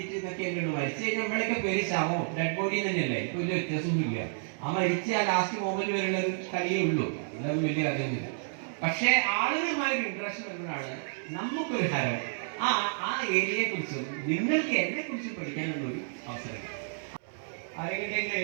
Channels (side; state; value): left; silent; 58 dB below the other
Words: എന്നൊക്കെ ഉള്ളൂ. മരിച്ചു കഴിഞ്ഞാൽ നമ്മളൊക്കെ പേര് ശവോ ഡെഡ് ബോഡി തന്നെയല്ലേ. ഇപ്പൊ വലിയ വ്യത്യാസമൊന്നുമില്ല. ആ മരിച്ച ആ ലാസ്റ്റ് മൊമെന്റ് വരെയുള്ള ഒരു കളിയേ ഉള്ളൂ. അതൊന്നും വലിയ കഥയൊന്നുമില്ല. പക്ഷെ ആളുകളുമായൊരു ഇൻട്രസ്റ്റ് വരുമ്പോഴാണ് നമുക്കൊരു ഹരം ആ ഏരിയയെ കുറിച്ചും നിങ്ങൾക്ക് എന്നെ കുറിച്ചും പഠിക്കാനുള്ള ഒരു അവസരം. ആരെങ്കിലും